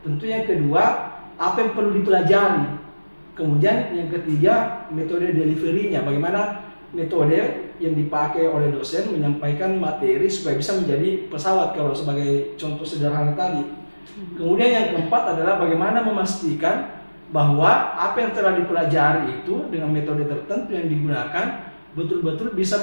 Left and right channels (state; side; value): inverted; both; correlation -1.00